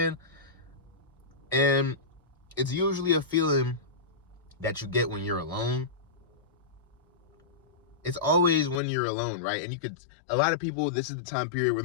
And it's usually a feeling that you get when you're alone. It's always when you're alone, right? And a lot of people, this is the time period where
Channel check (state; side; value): drops out; right; at 8.8 s